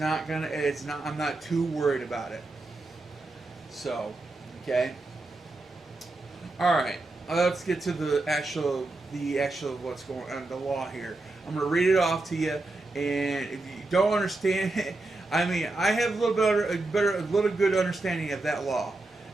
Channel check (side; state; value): left; quieter; 3.0 dB